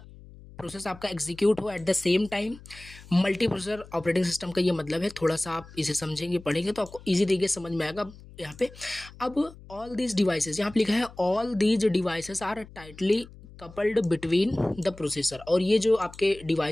प्रोसेस आपका एग्जीक्यूट हो eight the same time. Multi processor operating system का ये मतलब है, थोड़ा सा आप इसे समझेंगे पढ़ेंगे तो आपको इजी तरीके से समझ में आएगा यहाँ पे। अब ऑल दीज डिवाइसेस, यहाँ पे लिखा है all these devices are tightly coupled between the processor, और ये जो आपके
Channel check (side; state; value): left; noise; hum, 19 dB below the sound